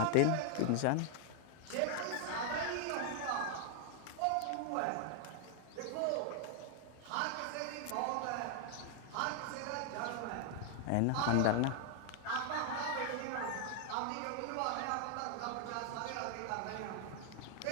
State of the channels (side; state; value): both; different; correlation 0.00